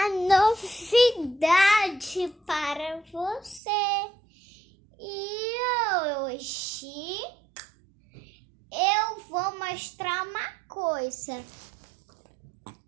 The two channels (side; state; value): left; drops out; at 3.6 s